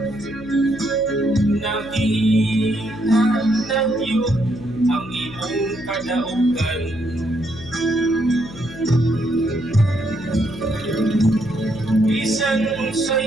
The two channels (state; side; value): noise; left; hum, 17 dB below the sound